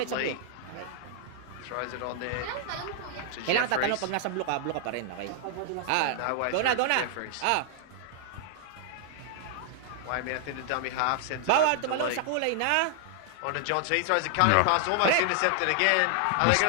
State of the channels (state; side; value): different; both; correlation 0.00